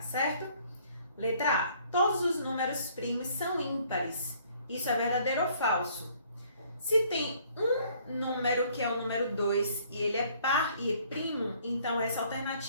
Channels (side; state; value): both; inverted; correlation -0.61